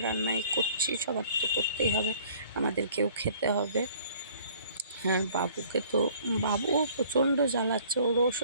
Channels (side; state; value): both; inverted; correlation -0.54